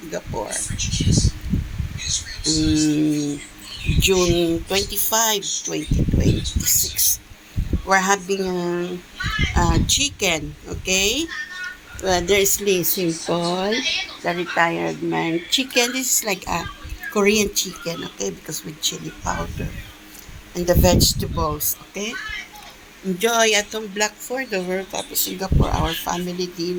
Um, June 25, 2026. We're having chicken. Okay. There is Lee Simple, the retired man. Chicken, this is like a Korean chicken, okay, because with chili powder. And the vegetables, okay? Enjoy atong Black for the World Cup of Singapore, our family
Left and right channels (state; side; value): identical; both; correlation 1.00